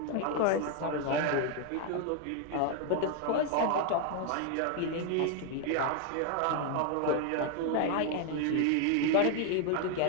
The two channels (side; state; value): both; different; correlation 0.00